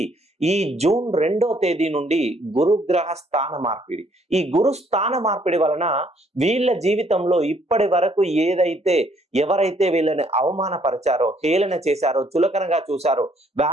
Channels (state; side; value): normal; both; correlation 0.66